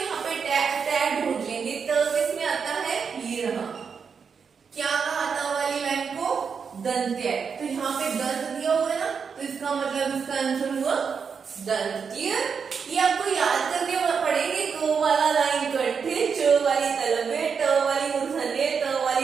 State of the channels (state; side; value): quieter; left; 6.1 dB